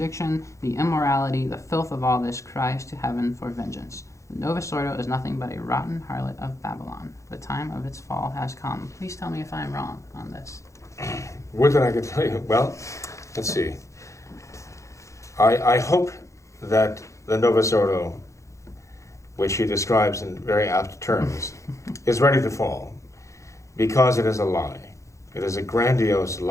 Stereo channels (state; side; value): late; right; 0.15 ms